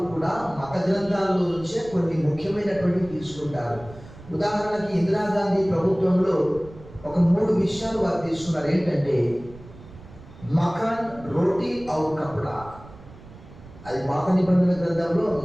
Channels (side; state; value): right; noise; rumble, 19 dB below the sound